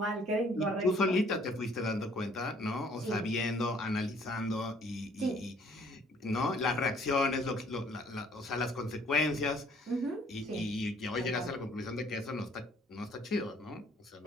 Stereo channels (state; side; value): normal; both; correlation 0.59